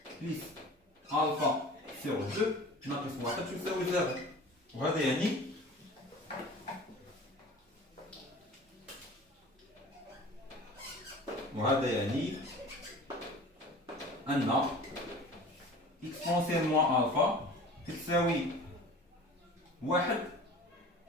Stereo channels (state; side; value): normal; both; correlation 0.41